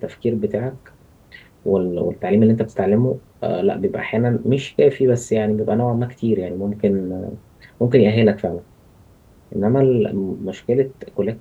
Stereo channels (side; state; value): both; identical; correlation 1.00